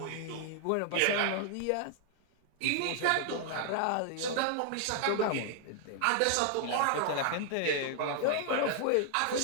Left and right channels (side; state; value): both; different; correlation 0.00